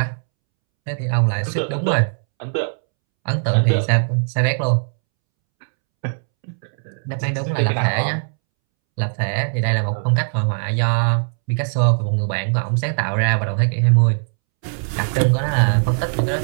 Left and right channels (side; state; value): left; silent; 66 dB below the other